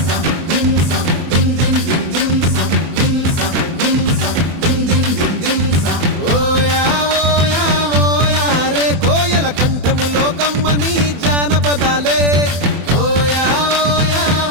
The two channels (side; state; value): left; late; 24 ms